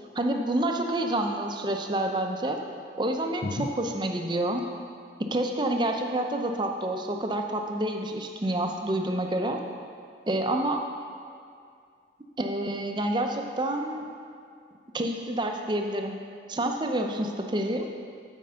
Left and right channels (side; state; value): both; normal; correlation 0.48